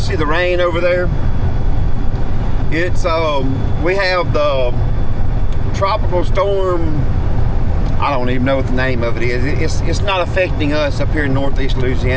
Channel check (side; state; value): both; identical; correlation 1.00